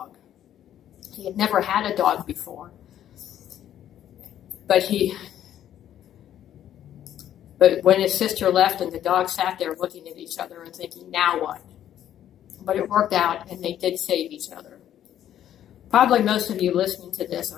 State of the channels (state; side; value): quieter; right; 11.0 dB